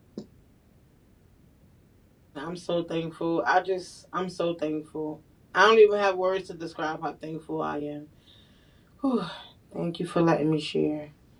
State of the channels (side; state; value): both; identical; correlation 1.00